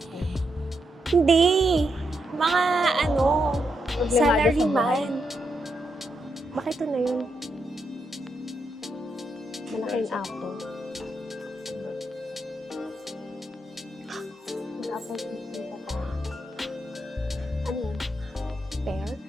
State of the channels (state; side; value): normal; both; correlation 0.82